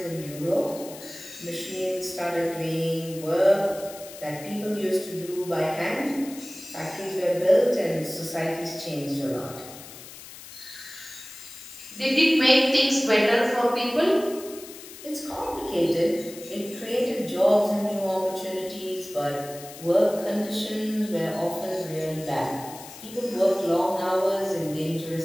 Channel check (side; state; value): left; noise; hiss, 15 dB below the sound